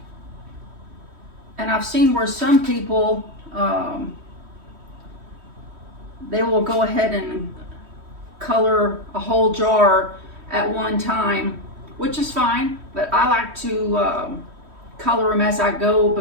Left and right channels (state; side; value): late; left; 3.1 ms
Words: And I've seen where some people they will go ahead and color a whole jar at one time, which is fine, but I like to color them as I go